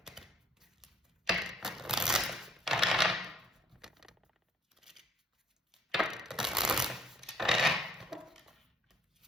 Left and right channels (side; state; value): both; normal; correlation 0.63